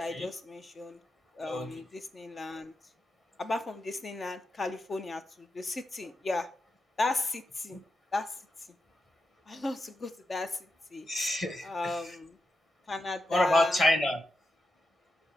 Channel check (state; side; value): normal; both; correlation 0.88